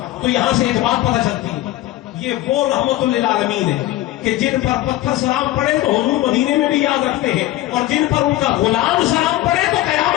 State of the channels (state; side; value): quieter; right; 15.5 dB